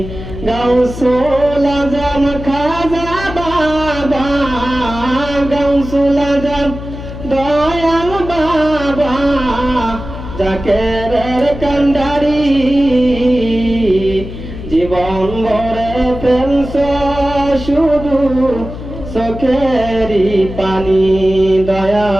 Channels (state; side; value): noise; left; hum, 10 dB below the sound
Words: গৌসুল আজম খাজা বাবা, গৌসুল আজম দয়াল বাবা, জাকেরের কান্ডারি, জীবন ভরে ফেলছ শুধু চোখেরই পানি